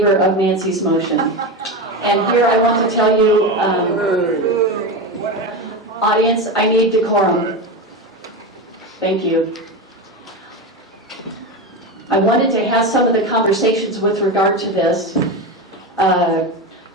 of Nancy's motion. And here I want to tell you, audience, I need decorum. Thank you. I wanted to have some of the conversations with regard to this.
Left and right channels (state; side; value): normal; both; correlation 0.19